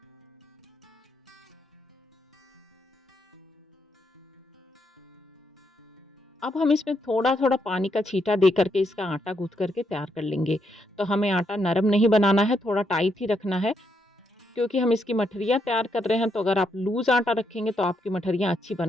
अब हम इसमें थोड़ा-थोड़ा पानी का छींटा दे करके इसका आटा गूँथ करके तैयार कर लेंगे। तो हमें आटा नरम नहीं बनाना है, थोड़ा टाइट ही रखना है क्योंकि हम इसकी मठरियाँ तैयार कर रहे हैं। तो अगर आप लूज़ आटा रखेंगे तो आपकी मठरियाँ अच्छी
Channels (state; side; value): normal; both; correlation 0.78